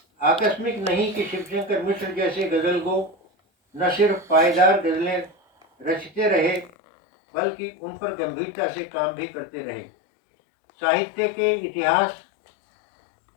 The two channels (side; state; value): right; drops out; at 6.7 s